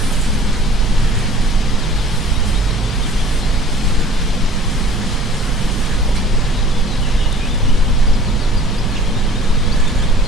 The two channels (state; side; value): normal; both; correlation 0.49